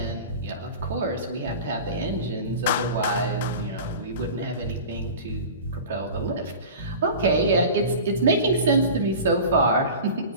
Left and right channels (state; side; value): inverted; both; correlation -0.36